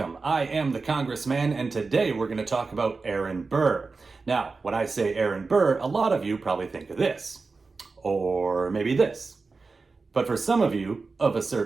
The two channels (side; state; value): left; quieter; 4.2 dB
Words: I am the Congressman and today we're going to talk about Aaron Burr. Now, when I say Aaron Burr, a lot of you probably think of this. Or maybe this. But for some of you of a